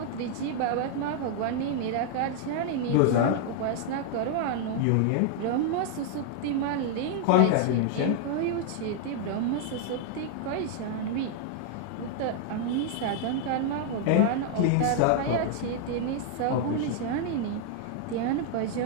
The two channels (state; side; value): different; both; correlation 0.00